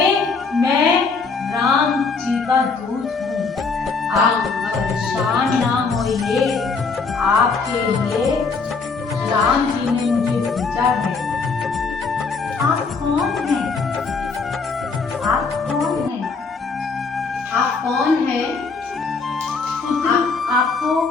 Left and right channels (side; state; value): right; quieter; 4.6 dB